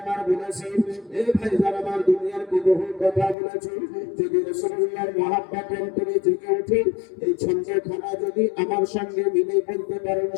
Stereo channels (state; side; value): drops out; right; at 3.4 s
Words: বলেছি এই ভাইজান আমার দুনিয়ার বহু কথা বলেছি যদি রাসূলুল্লাহর মহব্বত অন্তরে জেগে ওঠে এই ছন্দখানা যদি আমার সঙ্গে মিলে বলতে পারেন